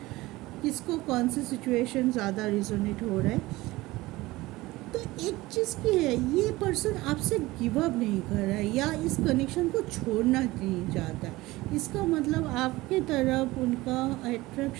किसको कौन से सिचुएशन ज़्यादा रिजोनेट हो रहा है। तो एक चीज़ की है, ये पर्सन आपसे गिव अप नहीं कर रहा है या इस कनेक्शन को छोड़ना नहीं चाहता है। इसका मतलब आपके तरफ उनका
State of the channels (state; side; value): quieter; left; 19.4 dB